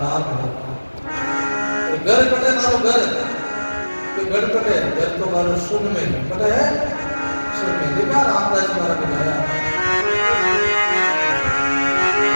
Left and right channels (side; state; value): both; inverted; correlation -1.00